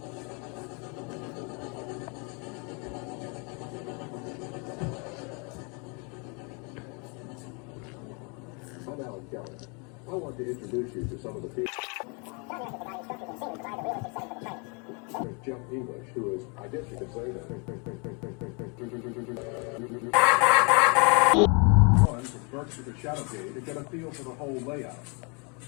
I'm Alan Kelly. I want to introduce you to some of the people. Jeff English, who is, I guess you could say that. One from Berkshire to Shadowgate to get a feel for the whole layout.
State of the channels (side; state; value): right; quieter; 33.9 dB